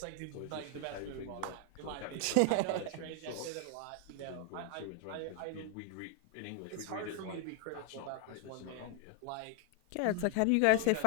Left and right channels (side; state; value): both; different; correlation 0.00